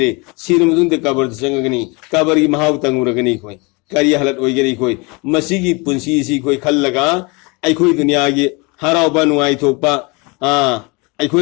sinum dunde kabar sangagani kabari mahaw tanguragani koi kari halat oigani koi masigi punsi si koi khallaga ai koi dunia gi harau banu ai thokpa ai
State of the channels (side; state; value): right; quieter; 28.1 dB